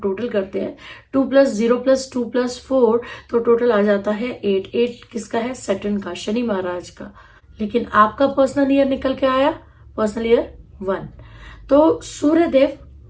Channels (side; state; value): both; identical; correlation 1.00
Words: करते हैं, 2+0+2+4, तो टोटल आ जाता है 8। 8 किसका है? सैटर्न का, शनि महाराज का। लेकिन आपका पर्सनल ईयर निकल के आया पर्सनल ईयर 1। तो सूर्य देव